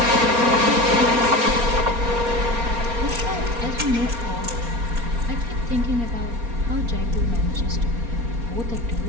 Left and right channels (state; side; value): late; left; 4.3 ms